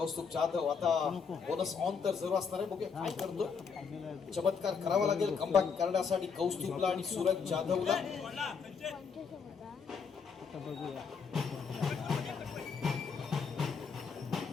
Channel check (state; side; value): quieter; right; 5.8 dB